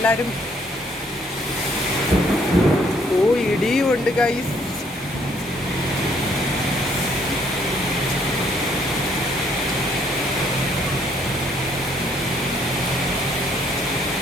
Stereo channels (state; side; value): normal; both; correlation 0.66